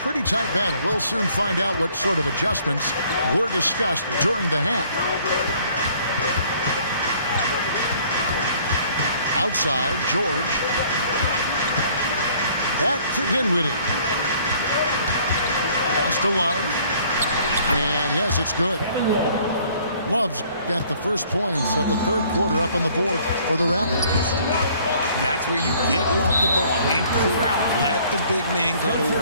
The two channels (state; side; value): inverted; both; correlation -0.58